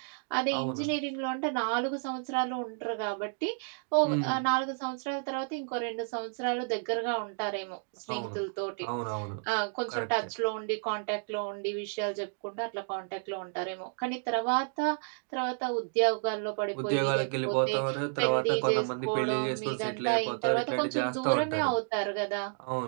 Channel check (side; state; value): left; silent; 57 dB below the other